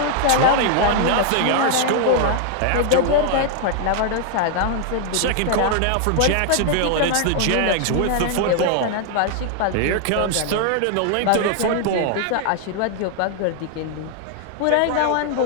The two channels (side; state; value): both; different; correlation 0.00